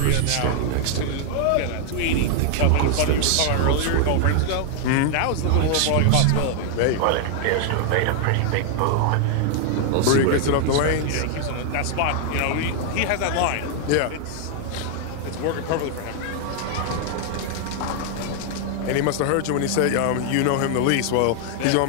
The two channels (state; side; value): different; both; correlation 0.00